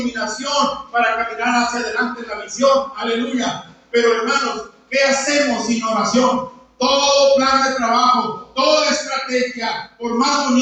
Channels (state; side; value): identical; both; correlation 1.00